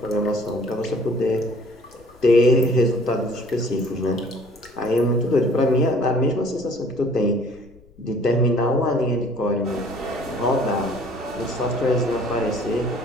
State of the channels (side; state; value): left; noise; rumble, 27 dB below the sound